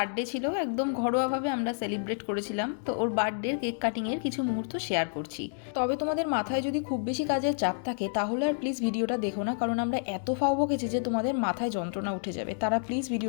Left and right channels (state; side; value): silent; right; digital silence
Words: ছিল, একদম ঘরোয়াভাবে আমরা সেলিব্রেট করেছিলাম। তো ওর বার্থডের কেক কাটিংয়ের কিছু মুহূর্ত শেয়ার করছি। তবে তোমাদের মাথায় যদি খুব বেশি কাজের চাপ থাকে তাহলে আর প্লিজ ভিডিওটা দেখো না, কারণ আমরা এত ফাও বকেছি যে তোমাদের মাথায় যন্ত্রণা উঠে যাবে। তারা প্লিজ